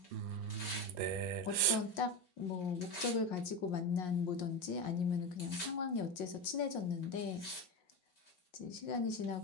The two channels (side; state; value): right; late; 5.6 ms